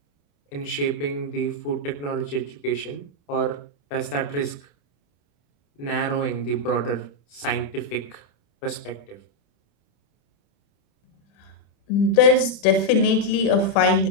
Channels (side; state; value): right; late; 28 ms